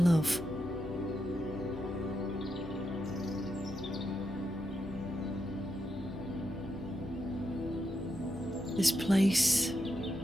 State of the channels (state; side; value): normal; both; correlation 0.84